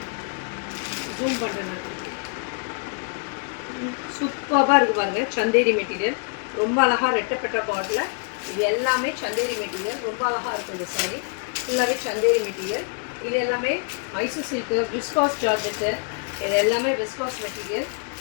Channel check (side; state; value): right; quieter; 38.2 dB